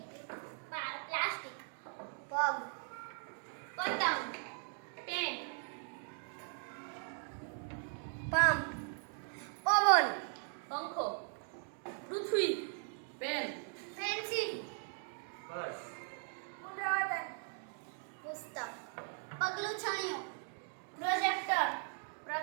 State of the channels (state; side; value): silent; left; 52 dB below the other